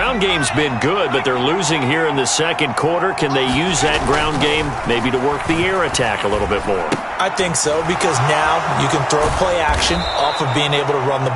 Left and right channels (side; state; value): both; identical; correlation 1.00